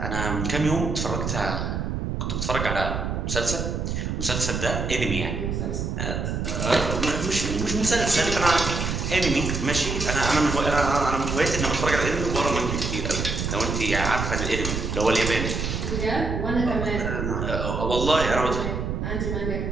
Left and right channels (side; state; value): right; noise; rumble, 2 dB below the sound